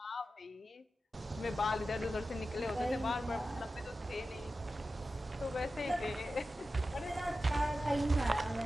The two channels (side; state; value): both; normal; correlation 0.93